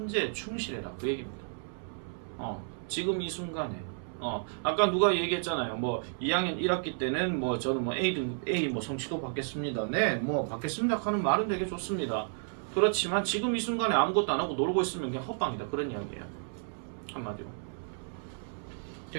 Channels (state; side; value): silent; left; 57 dB below the other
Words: 충실해라 그 얘기입니다. 지금 이 순간에 아까 누가 얘기했잖아요. 뭐 2학년 1학기 때는 뭐 저는 뭐 A 뭐 성취도 받겠습니다. 네, 뭐 받겠습니다 하는 말은 되게 좋습니다. 그렇지만 지금 이 순간에 아무것도 안 하고 놀고 있으면 그냥 헛방이다 그런 이야기예요. 한마디로.